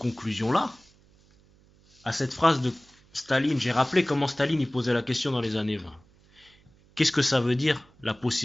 À cette phrase de Staline, j'ai rappelé comment Staline y posait la question dans les années 20. Qu'est-ce que ça veut dire, la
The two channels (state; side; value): noise; right; hum, 30 dB below the sound